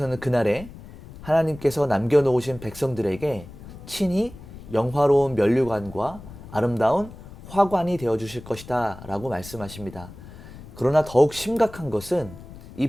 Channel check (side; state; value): left; noise; rumble, 16 dB below the sound